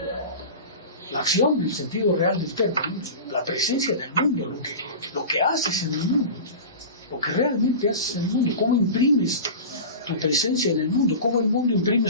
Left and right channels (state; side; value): inverted; both; correlation -0.31